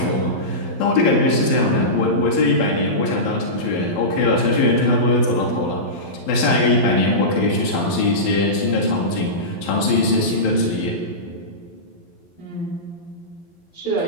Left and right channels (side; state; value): right; late; 12 ms